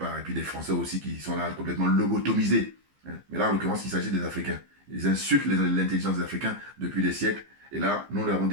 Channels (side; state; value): left; late; 15 ms